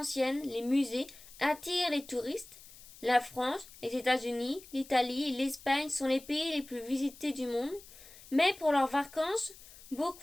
les musées attirent les touristes. La France, les États-Unis, l'Italie et l'Espagne sont les pays les plus visités du monde. Mais pour leurs vacances,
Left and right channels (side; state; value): left; noise; hiss, 20 dB below the sound